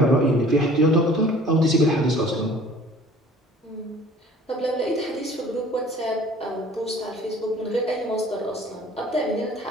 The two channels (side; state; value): both; normal; correlation 0.50